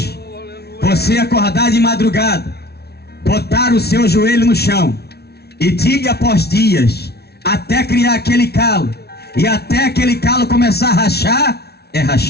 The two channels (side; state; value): right; late; 0.47 ms